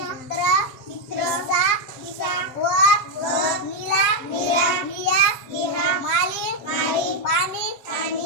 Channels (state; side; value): late; right; 7.2 ms